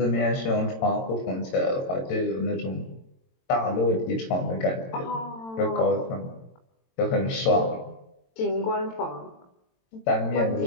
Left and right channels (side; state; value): right; late; 22 ms